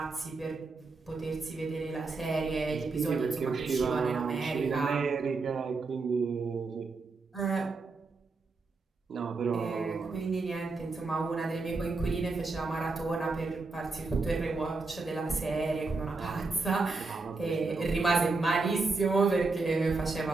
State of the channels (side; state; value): left; quieter; 3.9 dB